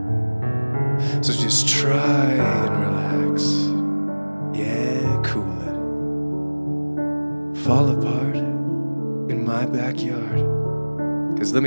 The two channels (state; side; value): inverted; both; correlation -1.00